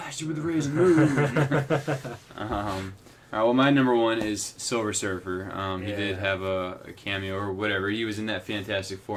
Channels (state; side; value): identical; both; correlation 1.00